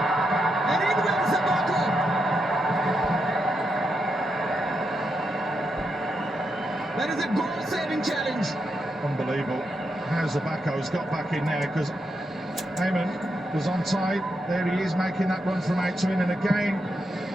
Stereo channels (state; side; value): normal; both; correlation 0.83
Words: And in went Zabako. That is a goal-saving challenge. Unbelievable. How Zabako's got back in there, because Ayman was onside. There he is making that run from out to in, and again